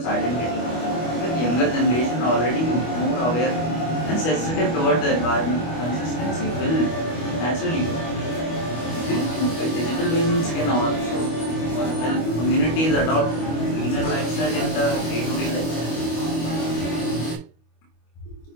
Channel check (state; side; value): late; right; 25 ms